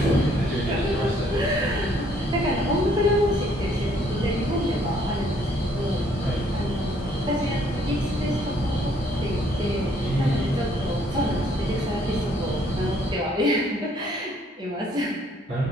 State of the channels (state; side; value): normal; both; correlation 0.64